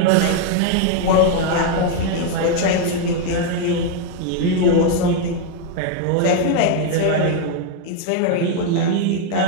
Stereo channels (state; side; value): different; both; correlation 0.00